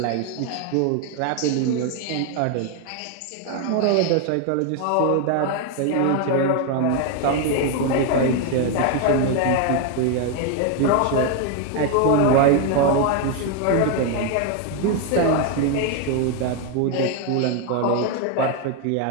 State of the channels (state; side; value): different; both; correlation 0.01